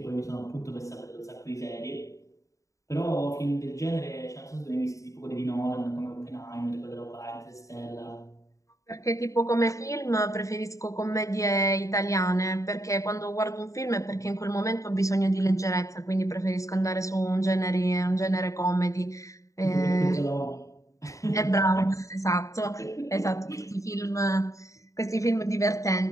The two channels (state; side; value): late; right; 0.16 ms